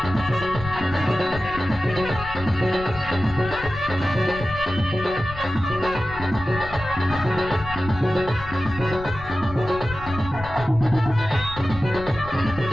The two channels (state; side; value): noise; left; rumble, 12 dB below the sound